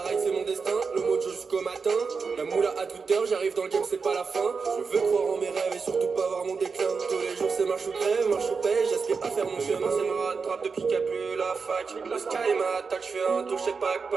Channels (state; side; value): quieter; left; 5.1 dB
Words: ride c'est mon destin, le mojo jusqu'au matin. La moula à toute heure, j'arrive dans le game, c'est pas la fin. Je veux croire en mes rêves et surtout pas voir mon déclin. Tous les jours c'est marche ou crève, marche ou paye. J'aspire à faire mon chemin, c'est ma rattrape depuis qu'il n'y a plus la fac. Le sky m'attaque, je fais un tour chez Pack.